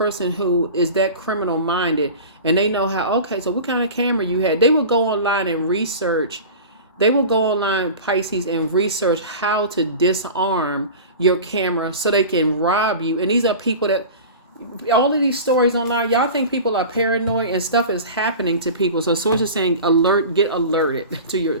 who is that criminal minded, and they know how, okay, so what kind of camera you had? They will go online and research. They will go online, Pisces, and research how to disarm your camera so they can rob you. And these are people that, all of these stories online, y'all think people are paranoid, and stuff is happening to people. So sources saying, get alerted to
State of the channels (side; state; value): both; inverted; correlation -0.35